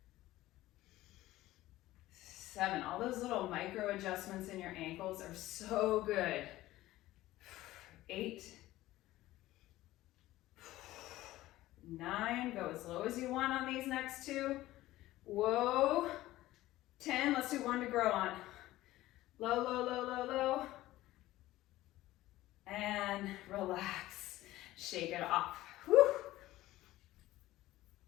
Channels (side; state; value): right; quieter; 16.3 dB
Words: 7. All those little micro adjustments in your ankles are so good. 8. 9, go as low as you want on these next 2. Whoa. 10, let's do 1 to grow on. Low, low, low, low, low. And relax. Shake it off. Whew.